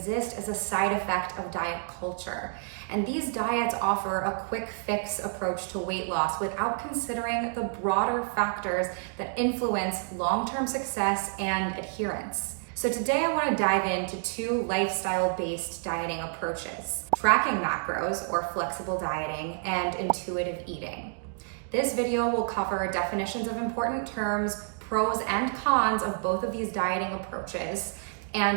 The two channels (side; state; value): left; silent; digital silence